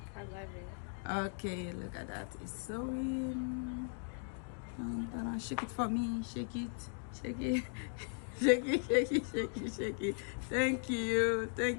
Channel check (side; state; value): right; silent; 52 dB below the other